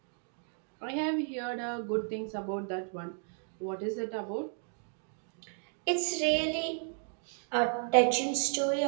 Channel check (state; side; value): silent; left; 55 dB below the other